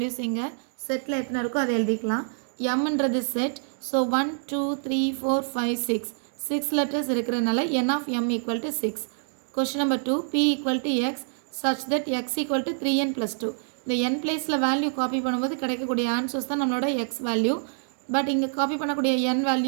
இங்க setல எத்தனை இருக்கோ அதை எழுதிக்கலாம். mன்றது set, so 1, 2, 3, 4, 5, 6. 6 letters இருக்கிறதுனால n of m equal to 6. Question number 2, p equal to x such that x equal to 3n plus 2. இந்த n placeல value copy பண்ணும்போது கிடைக்கக்கூடிய answers தான் நம்மளோட x value. பட் இங்கே காப்பி பண்ணக்கூடிய n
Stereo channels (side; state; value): left; silent; digital silence